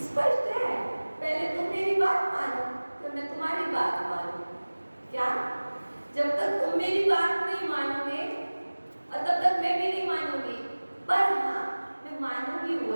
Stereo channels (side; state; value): both; inverted; correlation -1.00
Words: स्पष्ट है, पहले तुम मेरी बात मानो फिर मैं तुम्हारी बात मानूं। क्या जब तक तुम मेरी बात नहीं मानोगे और तब तक मैं भी नहीं मानूंगी, पर हाँ मैं मानूंगी